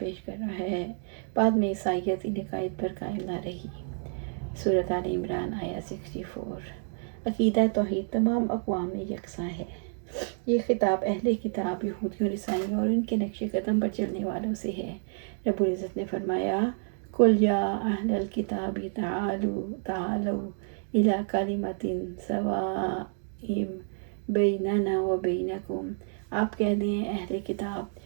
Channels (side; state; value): left; silent; 58 dB below the other